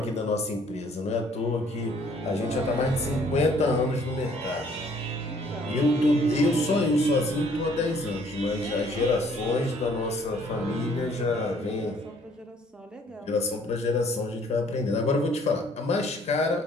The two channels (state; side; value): normal; both; correlation 0.60